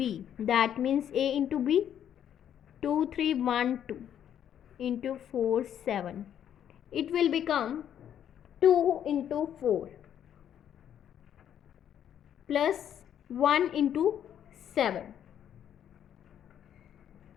that means A into B, 2, 3, 1, 2 into 4, 7. It will become 2 into 4 plus 1 into 7.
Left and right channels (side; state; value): right; quieter; 9.8 dB